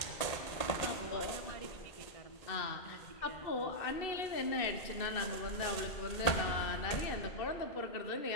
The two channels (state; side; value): late; right; 1.8 ms